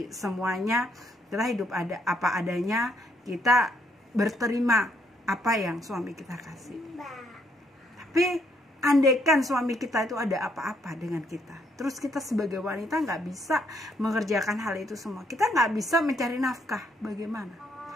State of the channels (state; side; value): normal; both; correlation 0.72